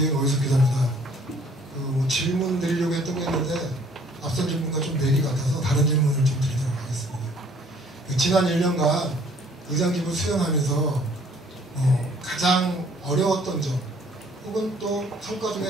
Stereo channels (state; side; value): normal; both; correlation 0.59